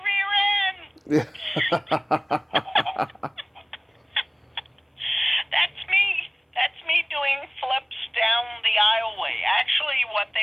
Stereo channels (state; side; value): identical; both; correlation 1.00